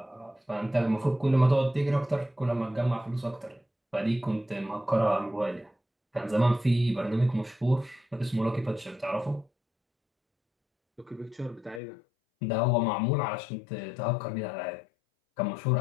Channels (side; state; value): right; drops out; at 11.8 s